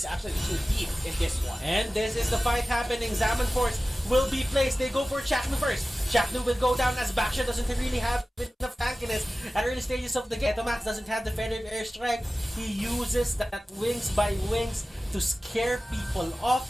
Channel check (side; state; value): both; normal; correlation 0.96